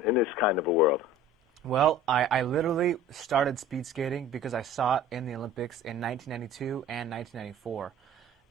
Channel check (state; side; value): normal; both; correlation 0.44